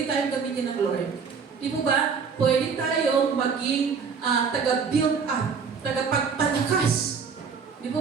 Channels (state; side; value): quieter; left; 5.8 dB